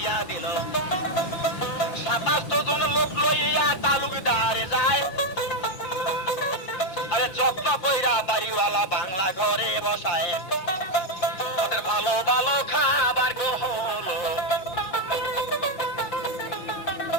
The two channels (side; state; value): right; late; 5.7 ms